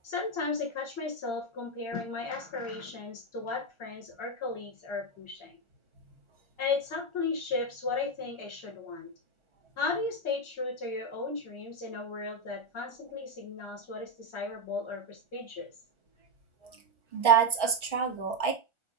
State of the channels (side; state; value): right; late; 1.4 ms